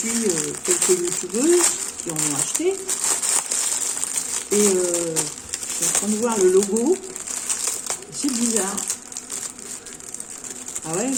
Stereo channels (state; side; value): identical; both; correlation 1.00